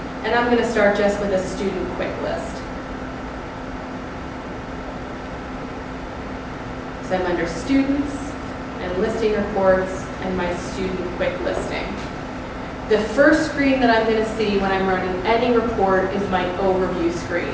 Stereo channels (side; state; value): both; identical; correlation 1.00